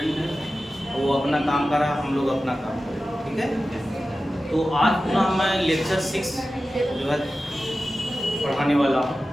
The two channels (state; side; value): normal; both; correlation 0.94